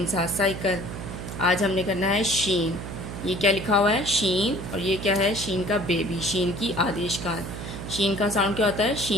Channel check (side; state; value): right; noise; hum, 8 dB below the sound